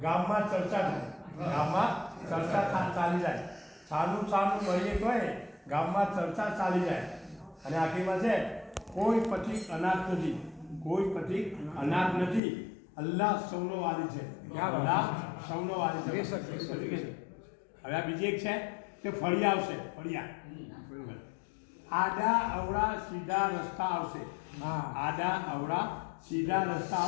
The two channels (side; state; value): right; drops out; at 12.4 s